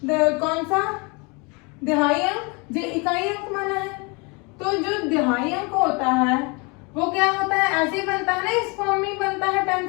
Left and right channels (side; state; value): right; quieter; 29.9 dB